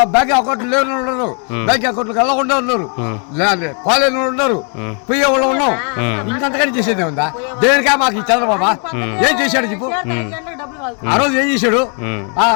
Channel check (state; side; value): quieter; right; 39.7 dB